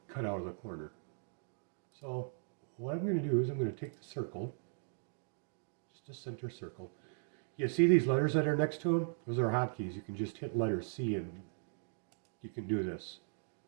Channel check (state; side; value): silent; left; digital silence